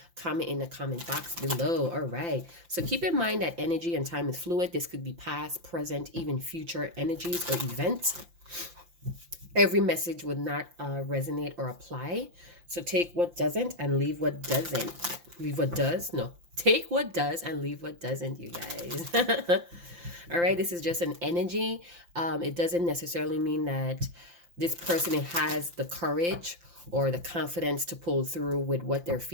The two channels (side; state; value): left; late; 5.8 ms